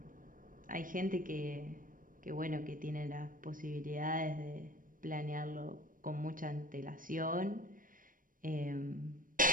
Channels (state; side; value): late; left; 0.40 ms